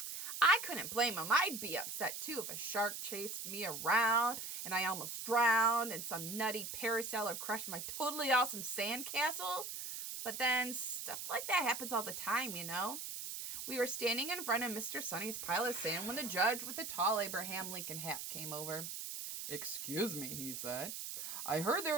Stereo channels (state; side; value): noise; right; hiss, 6 dB below the sound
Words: I couldn't blame him. I'd be upset too if a shark chased me around and I almost drowned and some nutty parasailer crushed my totally awesome sandcastle. But then stuff like that happens all the time, you know. We were standing in front of Mr. Sunny's pile of sand when the judge with the tall Abraham Lincoln hat came over. Excuse me, he said. I heard